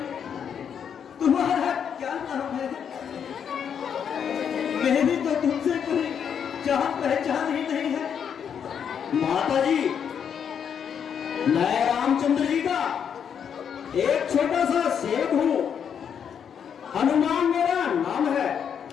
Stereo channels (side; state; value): right; quieter; 7.8 dB